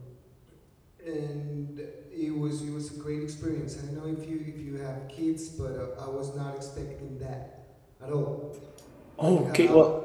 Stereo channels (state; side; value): identical; both; correlation 1.00